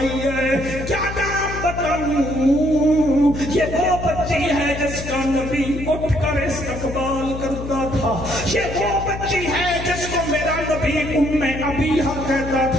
ہے، کیا نام بتاؤں؟ یہ وہ بچی ہے جس کا نبی اٹھ کر استقبال کرتا تھا، یہ وہ بچی ہے جس کو میرا نبی ابیہا کہتا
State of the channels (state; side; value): noise; left; hum, 8 dB below the sound